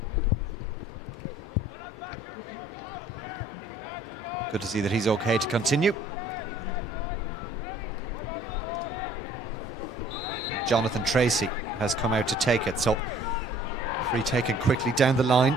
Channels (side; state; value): both; normal; correlation 0.56